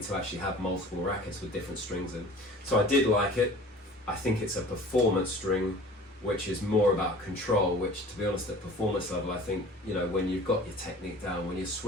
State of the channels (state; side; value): normal; both; correlation 0.44